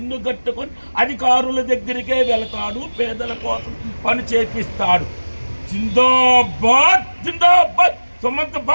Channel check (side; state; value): both; inverted; correlation -1.00